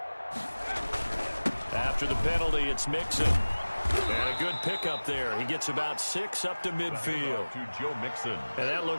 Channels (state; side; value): inverted; both; correlation -1.00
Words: After the penalty, it's Mixon. And a good pickup there. He gets about 6 up to midfield. To Joe Mixon. And that